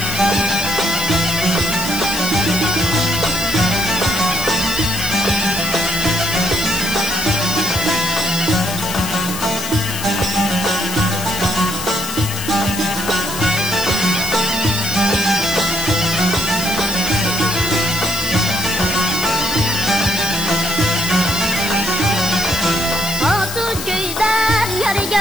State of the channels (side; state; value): left; noise; hiss, 8 dB below the sound